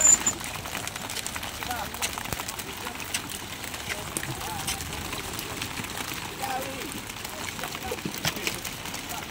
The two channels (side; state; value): both; identical; correlation 1.00